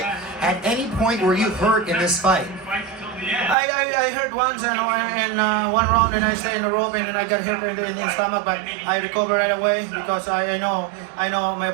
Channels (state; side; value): drops out; left; at 3.6 s